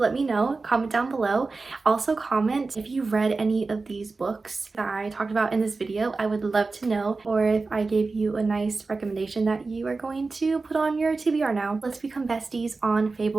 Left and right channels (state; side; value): quieter; left; 3.9 dB